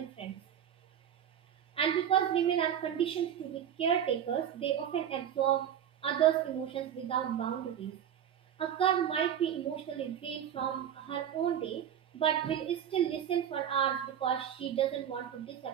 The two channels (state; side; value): quieter; left; 9.5 dB